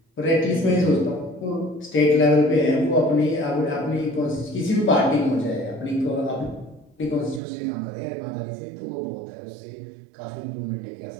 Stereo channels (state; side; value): drops out; left; at 7.4 s